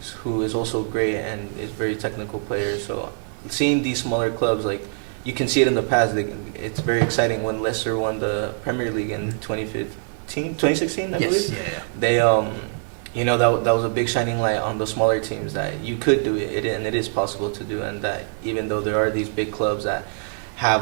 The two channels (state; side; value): silent; left; digital silence